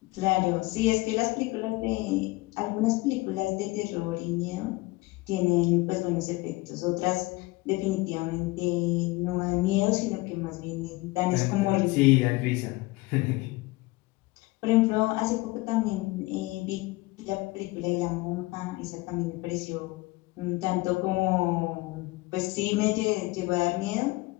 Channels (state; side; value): quieter; right; 21.7 dB